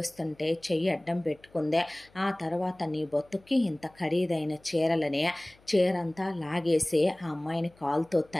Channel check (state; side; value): noise; left; hum, 30 dB below the sound